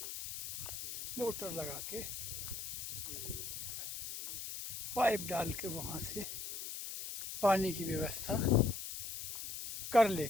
मोटर लगा के पाइप डाल के वहाँ से पानी की व्यवस्था कर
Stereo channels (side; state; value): left; noise; hiss, 6 dB below the sound